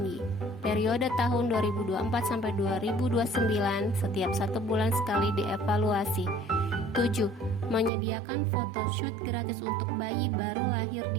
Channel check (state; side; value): drops out; left; at 7.9 s